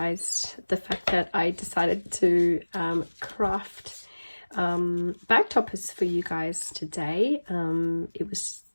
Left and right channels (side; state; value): both; inverted; correlation -1.00